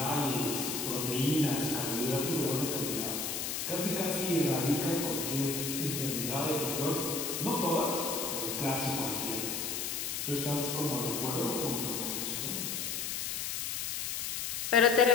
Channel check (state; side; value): noise; left; hiss, 2 dB below the sound